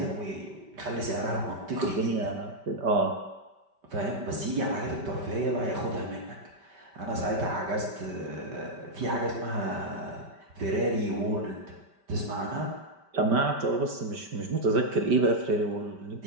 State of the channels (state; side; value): late; left; 5.1 ms